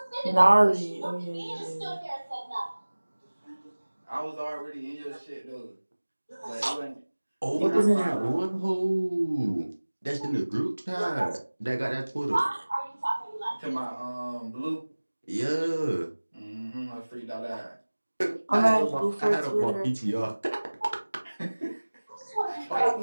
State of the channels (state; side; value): inverted; both; correlation -1.00